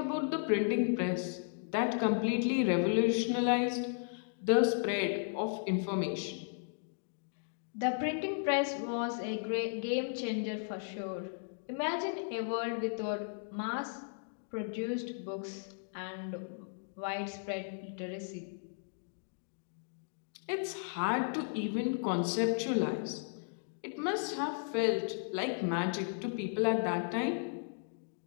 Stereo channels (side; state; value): right; silent; digital silence